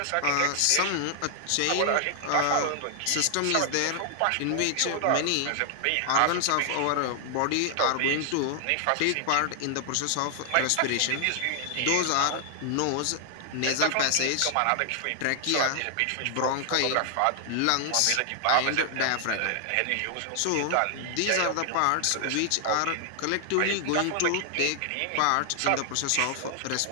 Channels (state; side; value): different; both; correlation 0.00